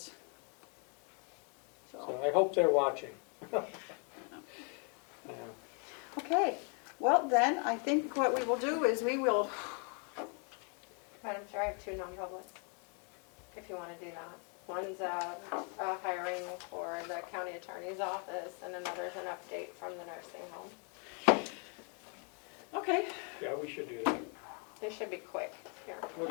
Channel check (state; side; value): quieter; right; 37.8 dB